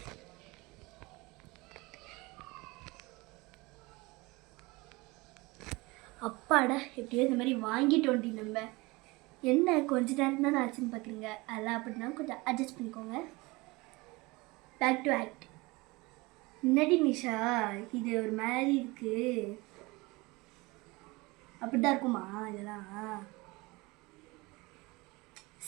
அப்பாடா, எப்படியோ இந்த மாதிரி வாங்கிட்டு வண்டி. நம்ம என்ன கொஞ்ச நேரம் தான் ஆச்சுன்னு பார்க்குறீங்க, அதெல்லாம் அப்படின்னா கொஞ்சம் அட்ஜஸ்ட் பண்ணிக்கோங்க. Back to act. முன்னாடி நிஷா இது ஒரு மாதிரி இருக்குது, அப்படிதான் இருக்குமா இதெல்லாம்?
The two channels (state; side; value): quieter; left; 23.7 dB